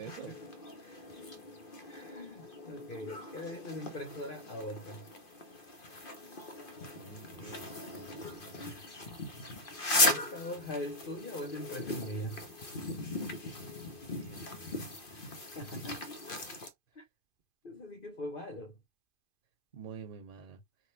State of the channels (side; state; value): right; late; 2.5 ms